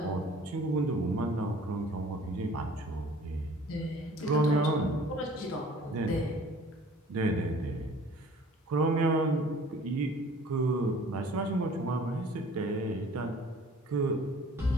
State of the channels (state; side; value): normal; both; correlation 0.50